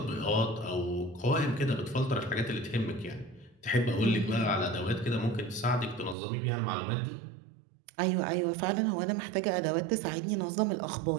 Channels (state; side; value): drops out; left; at 6.2 s